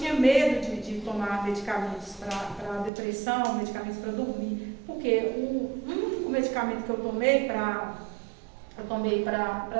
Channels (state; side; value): drops out; left; at 2.9 s